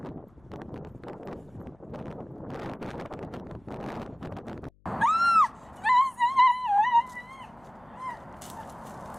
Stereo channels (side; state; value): left; noise; hum, 30 dB below the sound